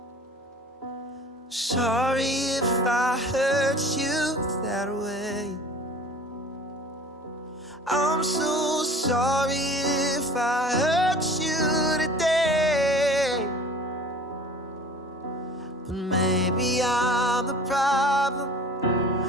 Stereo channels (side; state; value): both; normal; correlation 0.44